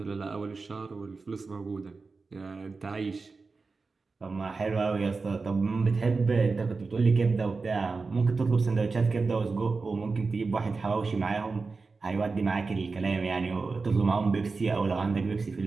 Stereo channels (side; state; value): left; quieter; 4.2 dB